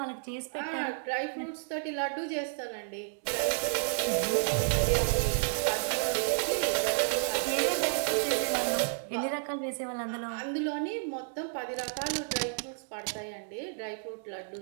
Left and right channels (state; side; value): silent; left; digital silence